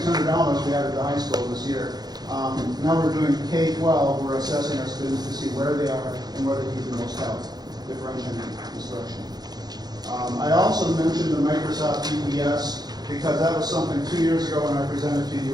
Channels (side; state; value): left; late; 0.19 ms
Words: we added to the high school this year. Now we're doing K-12. We're assessing our students to see where they are and where they need the most help, differentiating instruction. I also mentioned the Microsoft EPS because that was something 2 years ago when I presented to